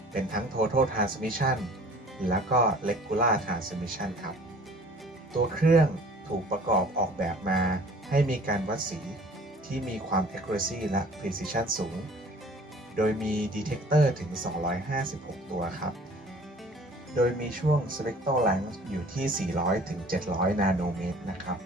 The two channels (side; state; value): both; normal; correlation 0.49